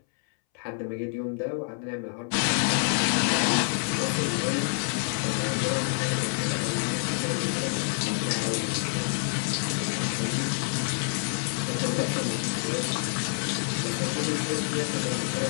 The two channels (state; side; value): silent; right; 60 dB below the other